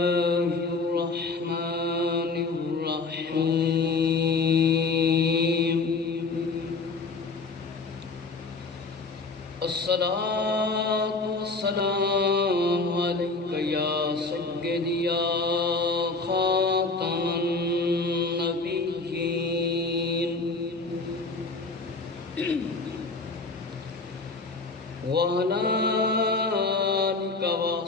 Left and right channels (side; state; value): right; quieter; 3.8 dB